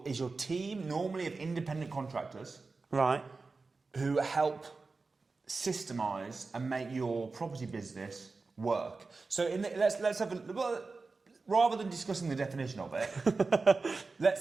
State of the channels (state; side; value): quieter; left; 4.0 dB